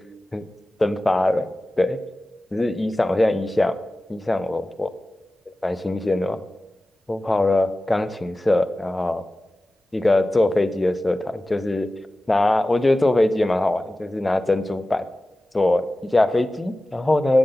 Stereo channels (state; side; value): normal; both; correlation 0.96